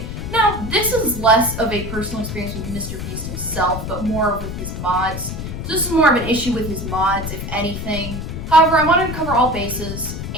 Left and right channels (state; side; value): noise; left; rumble, 6 dB below the sound